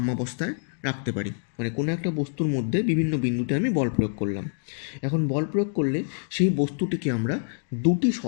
রাখতে পারি। মানে কোনো একটা বস্তুর মধ্যে বিভিন্ন বিন্দুতে আমি বল প্রয়োগ করলাম, এখন বল প্রয়োগ করলে সেই বস্তুটিকে আমরা দুটি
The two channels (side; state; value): right; silent; digital silence